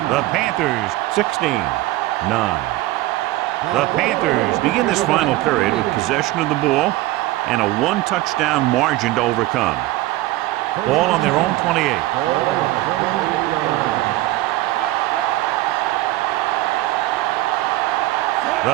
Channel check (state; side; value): quieter; left; 17.3 dB